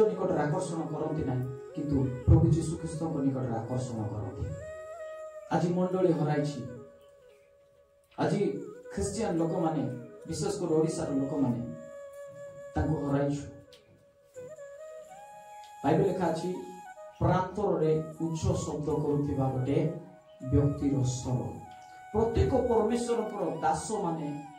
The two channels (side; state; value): both; identical; correlation 1.00